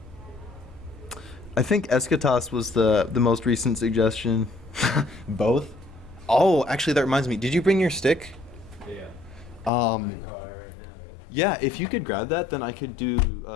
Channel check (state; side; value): drops out; right; at 9.7 s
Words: think Eschatos was the most recent suggestion. Both? Oh, actually, that reminds me. Did you bring your stick? Yeah. Um, yeah, if you could grab that, then I could do